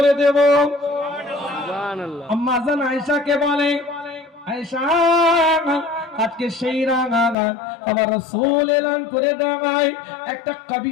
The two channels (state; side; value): drops out; right; at 7.4 s